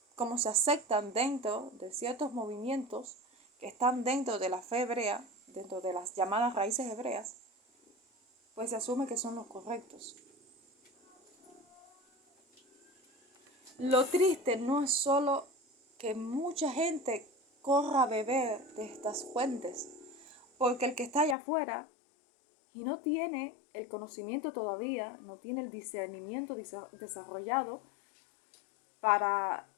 cómo se aceptan dentro de ciertos movimientos que están dentro de la fe hebrea, dentro de las llamadas raíces hebreas, pues se asume que son los correctos. Lo triste no es solo que mucha gente corra a beber de estas fuentes, porque el que está allá afuera y no tiene el conocimiento todavía, no tiene el discernimiento desarrollado para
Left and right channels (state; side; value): drops out; right; at 21.4 s